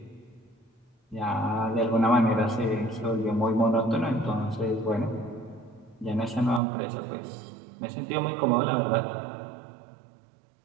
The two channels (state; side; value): drops out; left; at 6.6 s